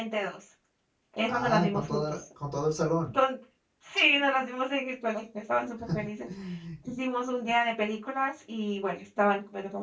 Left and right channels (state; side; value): identical; both; correlation 1.00